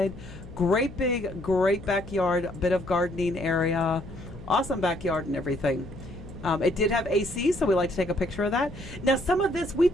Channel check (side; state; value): left; noise; hum, 15 dB below the sound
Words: Great backyard, a bit of gardening area. Awesome backyard and everything. It did have AC, so we like to take a picture of that. Now, some of this, we